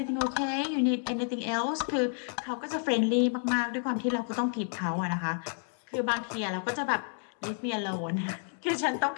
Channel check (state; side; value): silent; right; 57 dB below the other